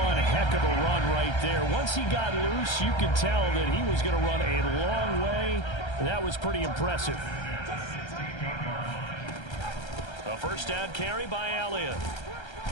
heck of a run right there. Once he got loose, you could tell that he was going to run a long way. That was pretty impressive. A first down carry by Elliott.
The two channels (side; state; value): right; late; 1.3 ms